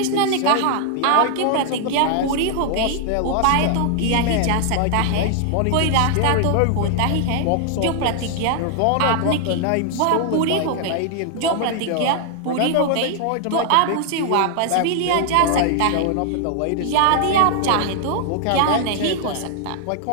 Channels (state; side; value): different; both; correlation -0.01